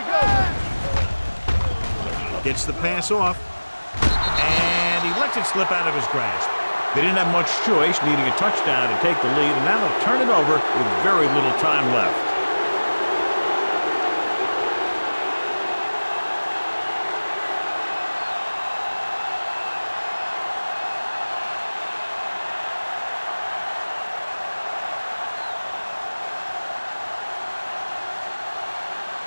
go. Gets the pass off. And he lets it slip out of his grasp. They didn't have much choice, needing a touchdown to take the lead, and now they'll turn it over with very little time left.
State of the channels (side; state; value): both; inverted; correlation -1.00